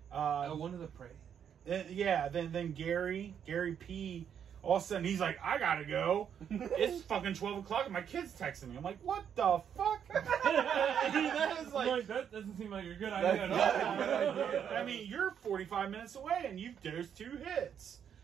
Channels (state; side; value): quieter; left; 8.4 dB